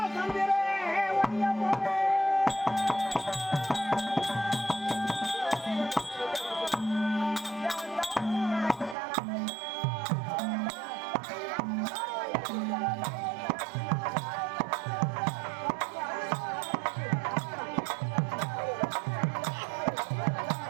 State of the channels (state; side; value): drops out; left; at 9.0 s